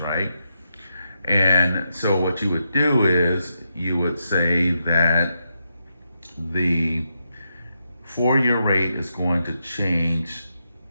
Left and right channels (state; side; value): inverted; both; correlation -0.84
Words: And so what you would do is you would say that the 4-year rate is going to change